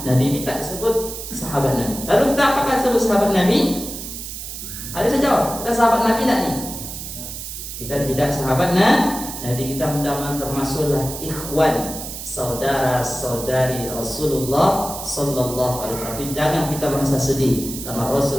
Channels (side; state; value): right; noise; hiss, 9 dB below the sound